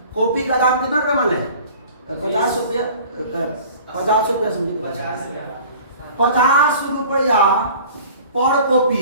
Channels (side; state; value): both; inverted; correlation -0.46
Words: कॉपी का दाम कितना रुपया मान लें, 50 रुपया, 50 रुपया समझिए, 50 रुपया पर कॉपी